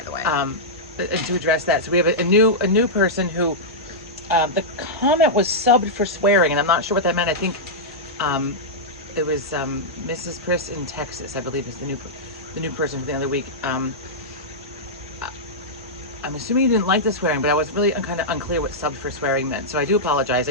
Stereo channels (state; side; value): normal; both; correlation -0.10